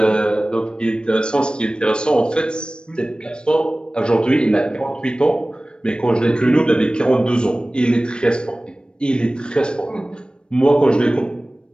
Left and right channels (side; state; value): right; late; 0.052 ms